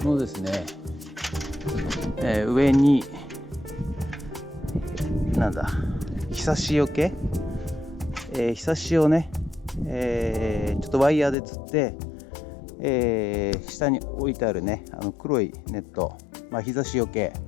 このですね、上にひさしよけ、ひさしをね、ちょっとワイヤーでつって、下に置いてあるね黒いネット、日差しよけ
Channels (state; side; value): drops out; right; at 11.4 s